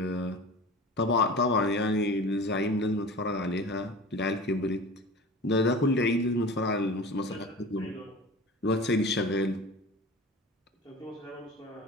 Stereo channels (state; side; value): normal; both; correlation 0.36